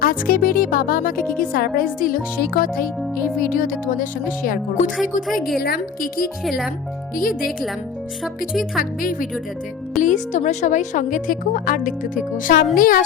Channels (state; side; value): quieter; right; 6.8 dB